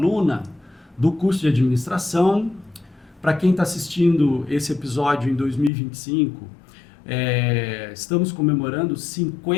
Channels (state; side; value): drops out; right; at 5.7 s